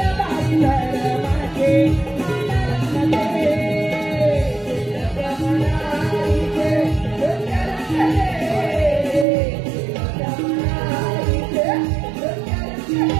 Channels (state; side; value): drops out; left; at 9.2 s